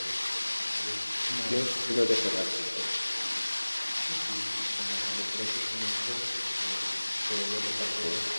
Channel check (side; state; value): both; inverted; correlation -1.00